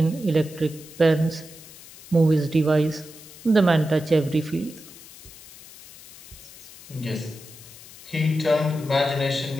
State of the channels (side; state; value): left; noise; hiss, 19 dB below the sound